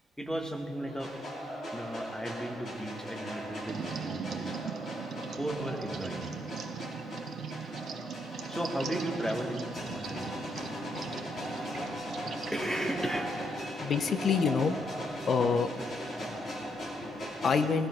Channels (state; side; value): normal; both; correlation 0.76